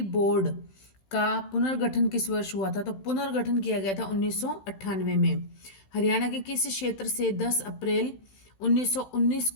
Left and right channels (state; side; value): late; right; 15 ms